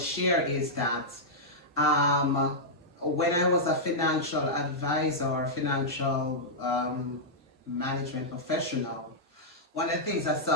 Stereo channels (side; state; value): both; normal; correlation -0.08